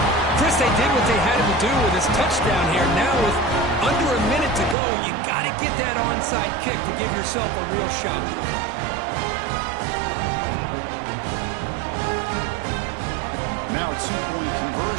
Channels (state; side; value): drops out; left; at 4.8 s